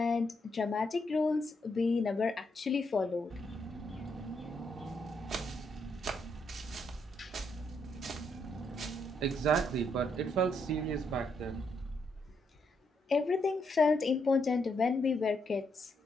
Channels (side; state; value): both; normal; correlation 0.77